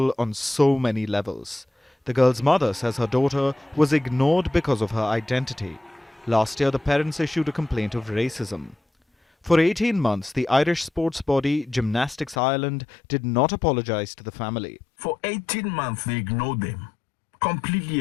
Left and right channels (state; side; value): drops out; right; at 12.4 s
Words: on so many levels. The girl's mother says her daughter was ignored because of her identity. Last year, the parents issued a complaint of racism. For 18 months, the Irish sports body Gymnastics Ireland did not apologise to the family. For 18 months, they ignored them. Completely